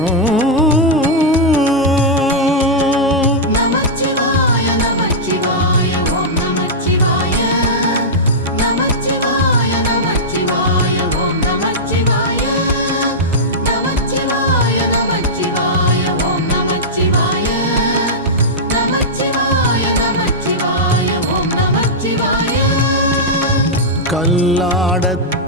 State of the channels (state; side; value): normal; both; correlation -0.09